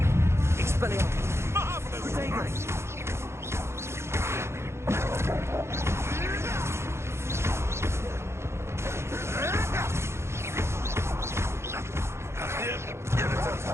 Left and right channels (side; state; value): left; late; 0.13 ms